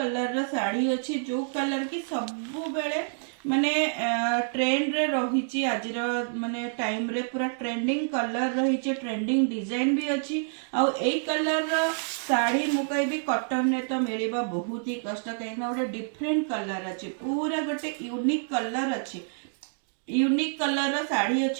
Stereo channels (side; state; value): left; silent; digital silence